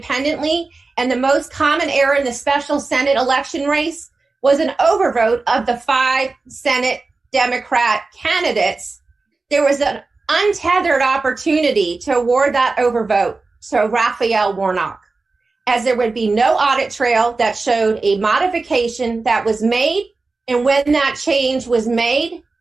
and the most common error in the special Senate election race was an overvote of the 5 Senate Democrat candidates, there was an untethered opportunity to award that overvote to Raphael Warnock, as there would be no audit trail that showed a modification that was made and when that change was made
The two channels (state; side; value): quieter; left; 3.8 dB